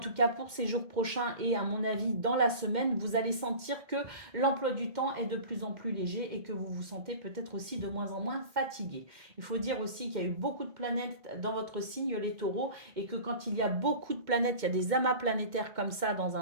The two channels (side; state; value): left; late; 2.1 ms